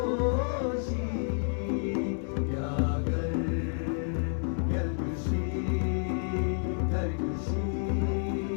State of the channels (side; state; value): right; silent; digital silence